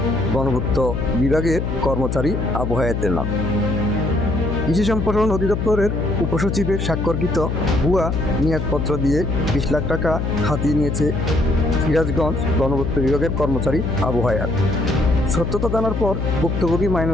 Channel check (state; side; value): noise; left; hum, 1 dB below the sound